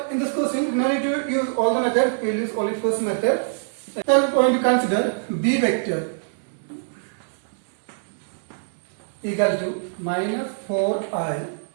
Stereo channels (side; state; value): left; silent; digital silence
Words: in this question, no need to use all the methods. We will use only first method. So we are going to consider B vector equal to minus 4i